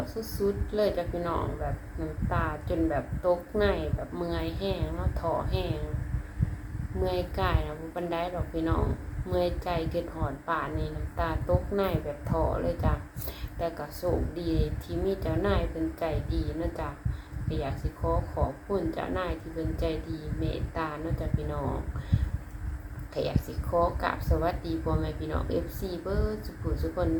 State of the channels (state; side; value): identical; both; correlation 1.00